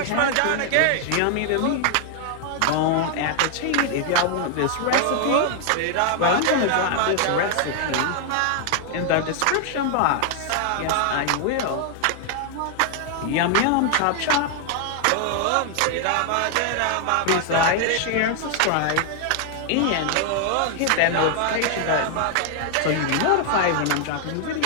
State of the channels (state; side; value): different; both; correlation 0.00